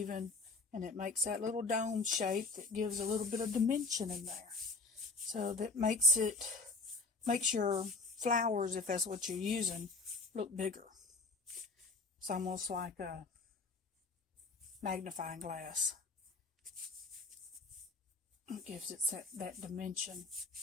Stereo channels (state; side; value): quieter; right; 3.6 dB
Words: and it makes that little dome shape that gives a little bit of dimension in there. So that makes your flowers, if that's what you're using, look bigger. It's almost like a magnifying glass. It gives it that dimension.